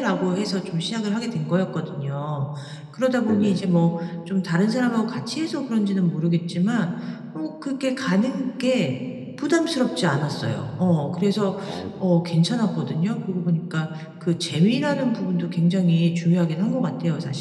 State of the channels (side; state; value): both; identical; correlation 1.00